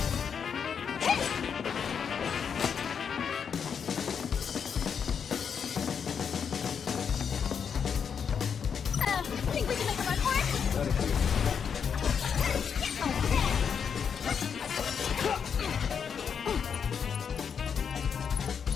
Think we can make a run for it?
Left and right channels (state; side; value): quieter; right; 7.0 dB